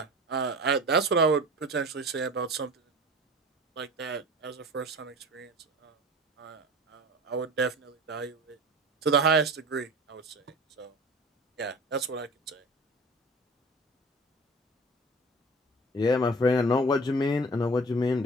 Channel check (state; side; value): normal; both; correlation 0.38